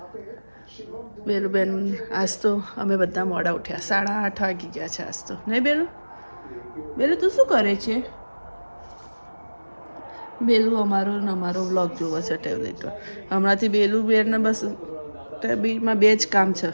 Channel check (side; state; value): both; inverted; correlation -1.00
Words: બેલુબેન આજ તો અમે બધા મોડા ઉઠ્યા, 8:30 વાગી ગયા છે આજ તો. નહીં બેલુ? બેલુ તું શું કરે છે? બેલુ અમારો વ્લોગ જોવો છે ટેબ્લેટ પર. હમણાંથી બેલુબેનને બસ ટેબ્લેટમાં બે જ કામ છે,